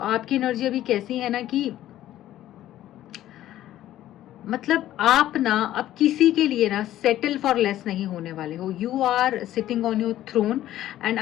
एनर्जी अभी कैसी है ना कि मतलब आप ना अब किसी के लिए ना सेटल फॉर लेस नहीं होने वाले हो। You are sitting on your throne and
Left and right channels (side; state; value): right; quieter; 13.3 dB